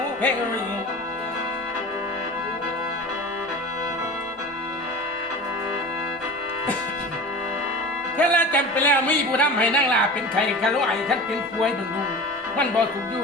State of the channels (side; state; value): both; normal; correlation 0.34